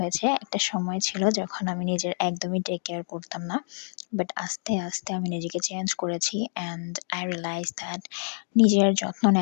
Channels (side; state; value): right; silent; digital silence